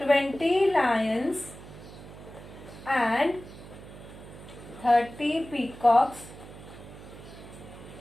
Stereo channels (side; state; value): right; noise; hum, 16 dB below the sound